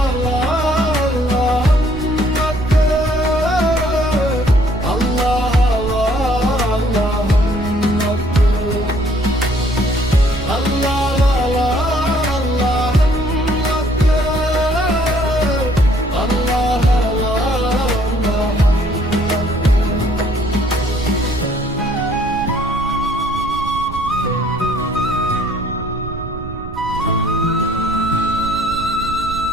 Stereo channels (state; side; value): noise; right; rumble, 10 dB below the sound